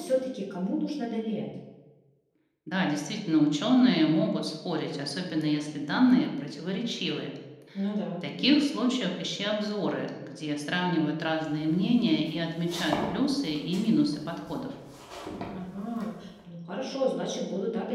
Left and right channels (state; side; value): identical; both; correlation 1.00